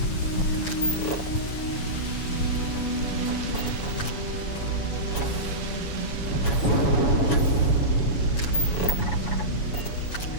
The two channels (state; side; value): late; right; 7.1 ms